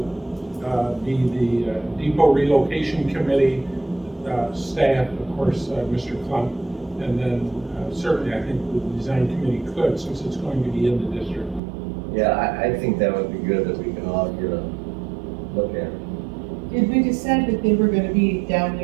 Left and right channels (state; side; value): drops out; left; at 11.6 s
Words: be the depot relocation committee staff, of course, Mr. Klump, and then certainly I think the design committee could, since it's going to be in the district. Yeah, I think that would be good if we can all get a said that they were gonna be down